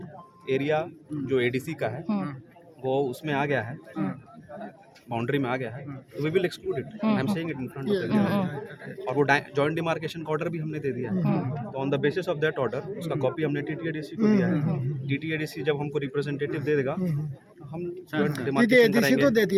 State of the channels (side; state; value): both; identical; correlation 1.00